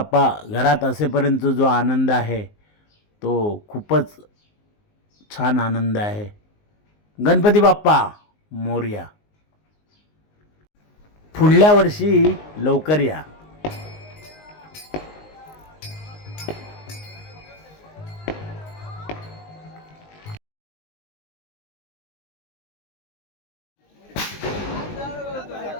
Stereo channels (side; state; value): right; late; 19 ms